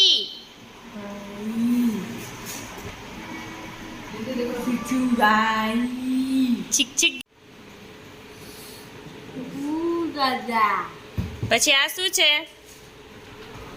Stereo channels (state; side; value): identical; both; correlation 1.00